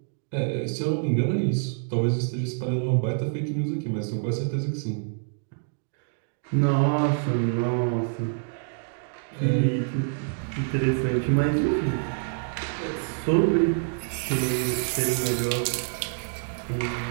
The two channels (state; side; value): silent; left; digital silence